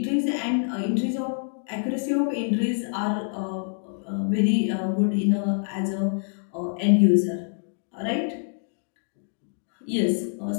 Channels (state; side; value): silent; right; digital silence